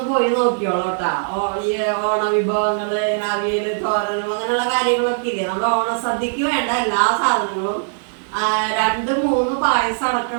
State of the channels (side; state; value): left; silent; digital silence